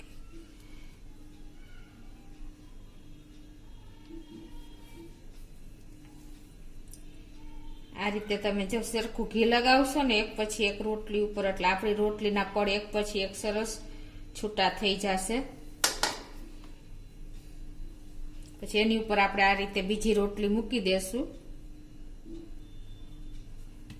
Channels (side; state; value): both; identical; correlation 1.00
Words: આ રીતે તમે જો સરખું ઘી લગાવશો ને એક પછી એક રોટલી ઉપર, એટલે આપણી રોટલીના પડ એક પછી એક સરસ છૂટા થઈ જશે. પછી એની ઉપર આપણે આ રીતે બીજી રોટલી મૂકી દેશું.